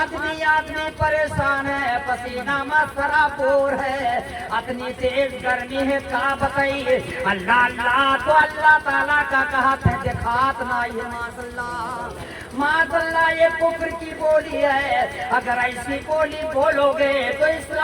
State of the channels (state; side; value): identical; both; correlation 1.00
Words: परेशान है, पसीना मसरापुर है, इतनी तेज गर्मी है का बताइए। अल्लाह अल्लाह तो अल्लाह ताला का कहते हैं दिखात नहीं है। माशाअल्लाह माशाअल्लाह ये कुफ्र की बोली है। अगर ऐसी बोली बोलोगे तो